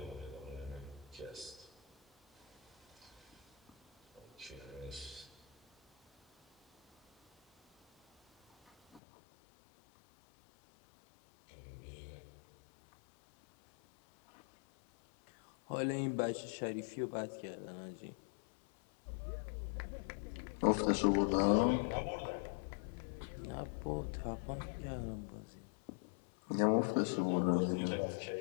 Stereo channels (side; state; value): right; drops out; at 9.0 s